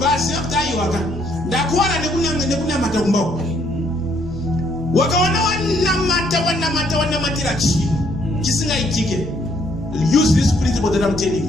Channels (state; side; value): normal; both; correlation 0.68